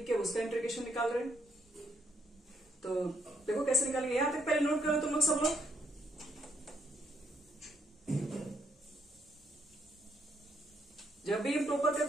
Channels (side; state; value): both; normal; correlation 0.74